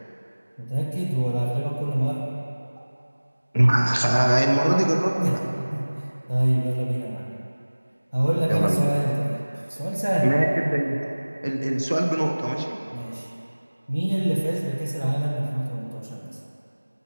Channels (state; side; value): inverted; both; correlation -1.00